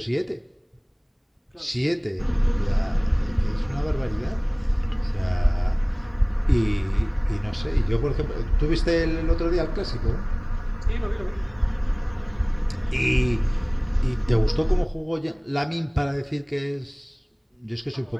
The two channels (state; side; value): identical; both; correlation 1.00